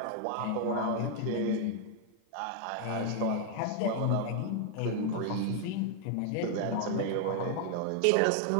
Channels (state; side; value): different; both; correlation 0.00